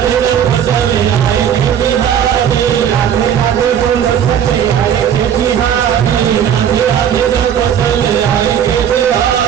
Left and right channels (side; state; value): left; quieter; 9.0 dB